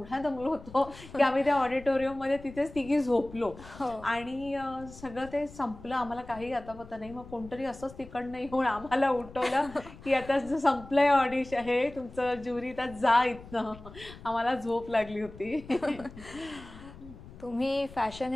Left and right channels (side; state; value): left; noise; rumble, 18 dB below the sound